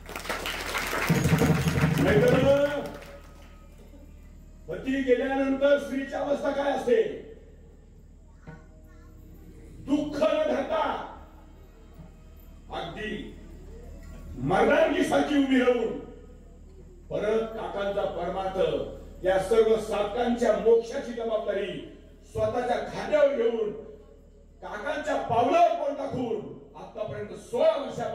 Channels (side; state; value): both; identical; correlation 1.00